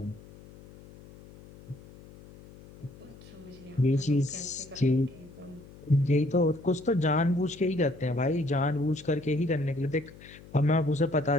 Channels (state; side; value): noise; left; hum, 20 dB below the sound